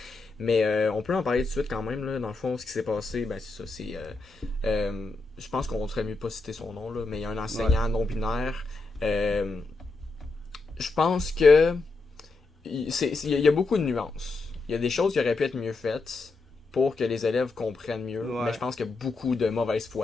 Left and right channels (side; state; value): right; quieter; 3.5 dB